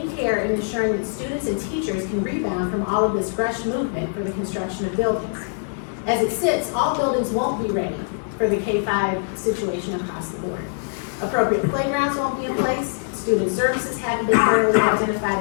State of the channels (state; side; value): silent; right; digital silence